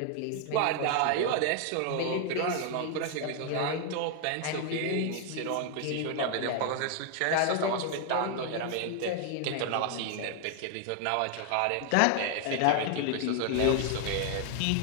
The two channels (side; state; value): both; different; correlation 0.00